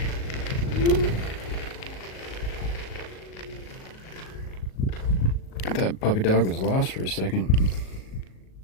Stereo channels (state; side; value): late; right; 38 ms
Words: I thought puppy dog was lost for a second.